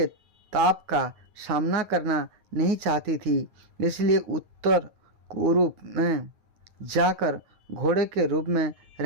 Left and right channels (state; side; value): late; left; 9.4 ms